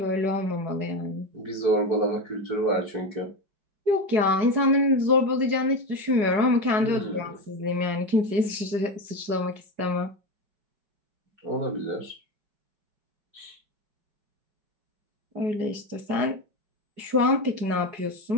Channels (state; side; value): late; left; 4.8 ms